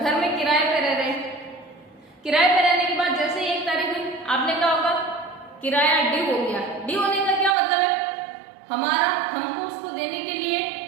में किराए पे रह रहे हैं, किराए पे रहने के बाद जैसे ही 1 तारीख हुई आपने कहा होगा किराया ड्यू हो गया। ड्यू होने का क्या मतलब है, हमको उसको देने के लिए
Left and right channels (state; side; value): drops out; left; at 7.6 s